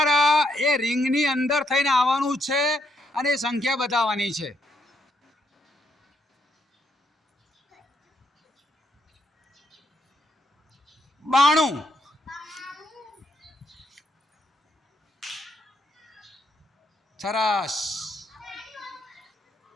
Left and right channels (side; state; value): both; normal; correlation 0.75